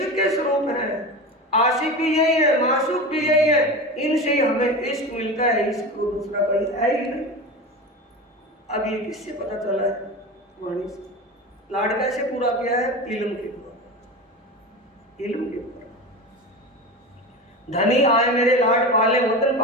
के स्वरूप है। आशिक भी यही है, मासूक भी यही है, इनसे ही हमें इश्क मिलता है। इश्क को दूसरा कोई है ही नहीं। अब ये किससे पता चला है? वाणी से। लाड कैसे पूरा किया है? इल्म के द्वारा, इल्म के द्वारा। धनी आए मेरे लाड पाले वतन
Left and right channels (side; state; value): both; normal; correlation 0.27